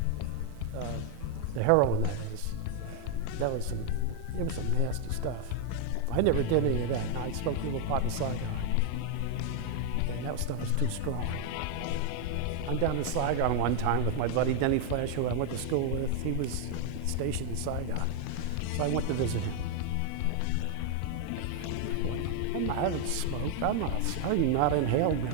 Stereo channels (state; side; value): different; both; correlation 0.00